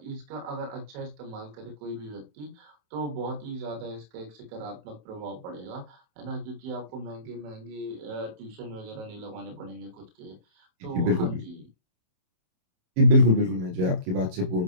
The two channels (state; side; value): late; left; 27 ms